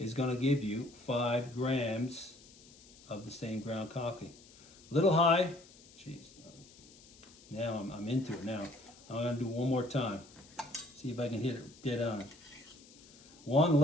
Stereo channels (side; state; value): left; noise; hiss, 23 dB below the sound